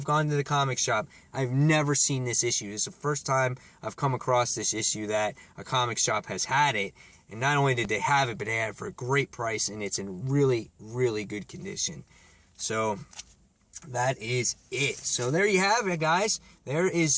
gone to the comic shop, I've never seen this issue. This is the first time I've come across this issue that a comic shop has had it. And not only did they have it, but they had it for a great price, and it's in really, really good condition. So that is it. So there you have it, guys. There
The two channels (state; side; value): identical; both; correlation 1.00